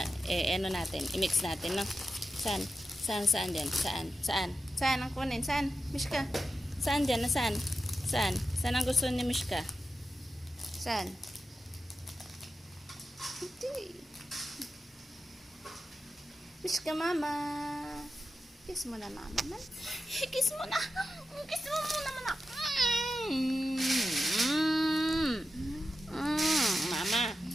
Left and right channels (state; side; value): normal; both; correlation 0.91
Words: ano natin? I-mix natin, no? Saan dyan? Saan ang kunin? Saan? Mishka? Saan dyan? Saan? Saan ang gusto ni Mishka? Saan? Hindi. Mishka, mama. Kiss mo na, mama, man. Kiss mo na. Kiss mo muna, mama. Mama.